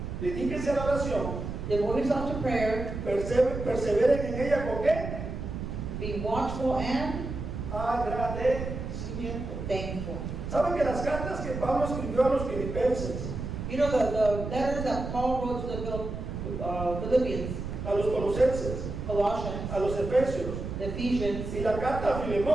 Dedíquense a la oración, Devote yourself to prayer, perseveren en ella con qué? be watchful and Agradecimiento. thankful. ¿Saben que las cartas que Pablo escribió a los filipenses, You know the letters that Paul wrote to the Philippians, a los colosenses, Colossians, a los efesios the Ephesians, y la carta a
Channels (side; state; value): right; noise; rumble, 6 dB below the sound